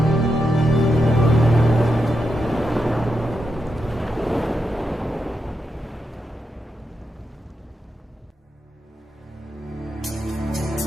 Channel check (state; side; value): normal; both; correlation 0.86